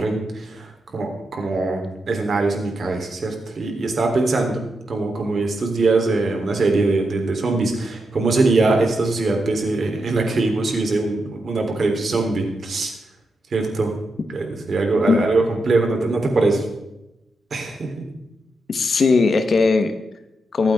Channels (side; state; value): both; normal; correlation 0.85